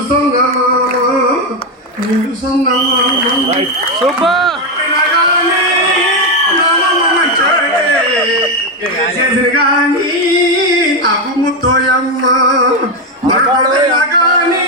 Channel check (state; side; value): normal; both; correlation 0.08